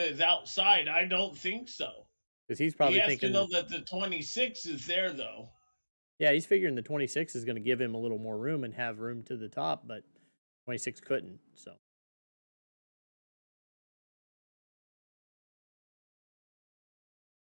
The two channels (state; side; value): inverted; both; correlation -1.00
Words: outside? I don't think so. Because he's probably thinking to know that the 26 is there, though. Yeah, he's figuring the 26 is going to give him a little more room and have room to the top, but 26 couldn't, so.